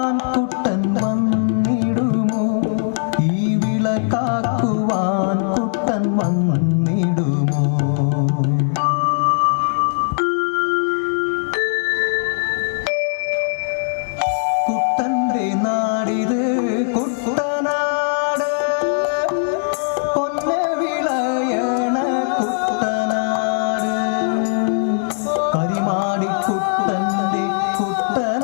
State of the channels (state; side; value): silent; right; digital silence